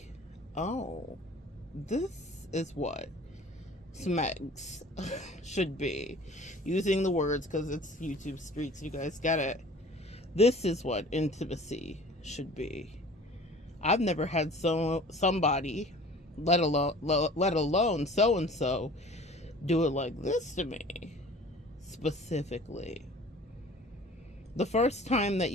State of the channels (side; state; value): both; normal; correlation 0.46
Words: oh, this is what smegs should be. Using the words because it's YouTube streets, you guys get it. This is what intimacy should be. I've never had somebody, let alone so and so, do it like this to me specifically. The first time that